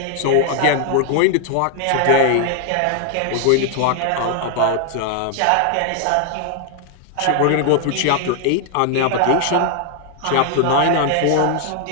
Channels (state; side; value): different; both; correlation 0.00